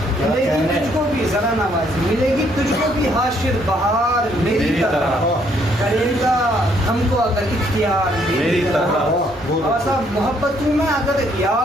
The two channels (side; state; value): both; normal; correlation 0.68